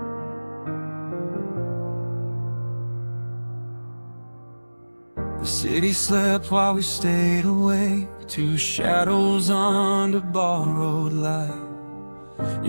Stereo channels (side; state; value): both; inverted; correlation -1.00